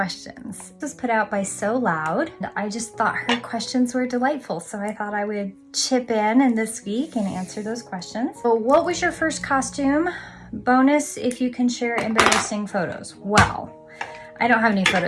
This was put out by So Loud. I just thought her questions were delightful, so I thought I would chip in this week and answer those questions. So what was your first costume? Bonus if you can share embarrassing photos. Well, I don't have any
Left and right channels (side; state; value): both; identical; correlation 1.00